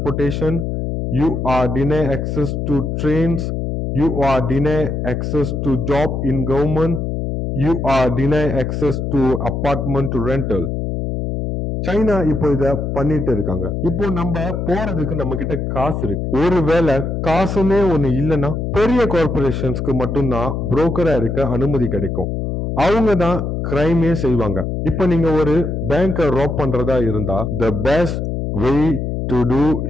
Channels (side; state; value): left; noise; hum, 2 dB below the sound